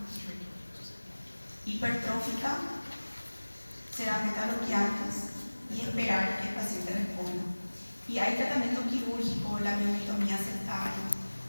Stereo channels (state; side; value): inverted; both; correlation -1.00